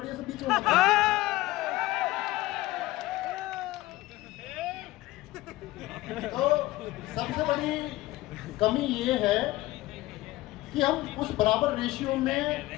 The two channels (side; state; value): right; quieter; 17.9 dB